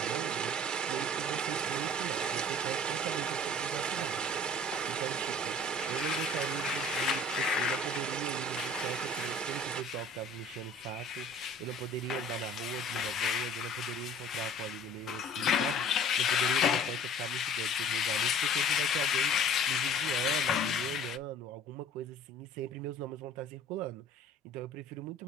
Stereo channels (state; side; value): normal; both; correlation 0.48